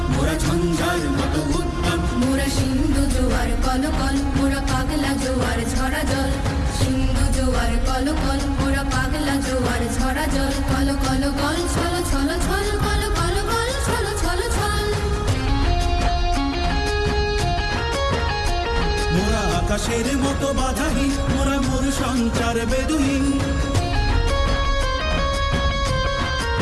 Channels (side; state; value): both; identical; correlation 1.00